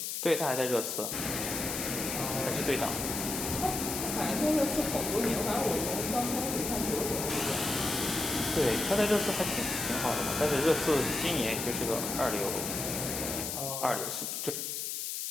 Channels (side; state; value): left; noise; hiss, 3 dB below the sound